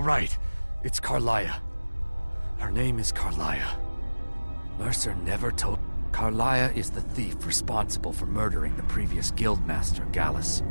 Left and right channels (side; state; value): both; inverted; correlation -1.00